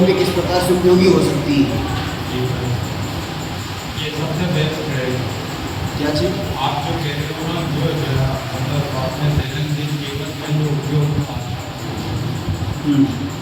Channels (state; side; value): identical; both; correlation 1.00